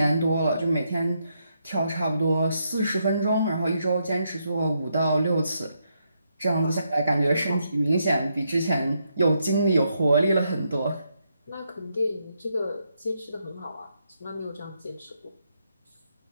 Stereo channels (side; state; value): both; inverted; correlation -0.79